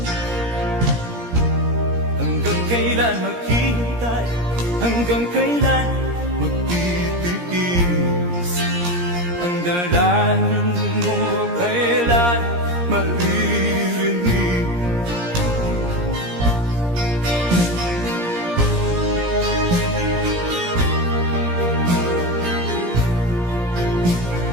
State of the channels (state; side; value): late; left; 17 ms